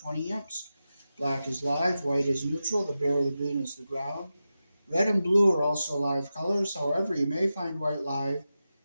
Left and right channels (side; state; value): both; inverted; correlation -0.92